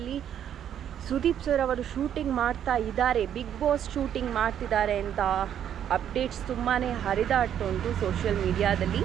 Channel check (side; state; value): left; quieter; 9.7 dB